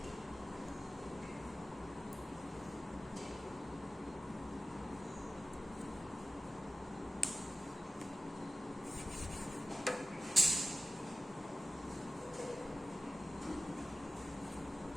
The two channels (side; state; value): both; normal; correlation 0.94